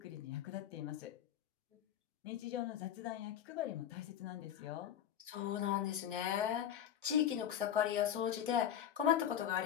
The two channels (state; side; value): quieter; right; 10.0 dB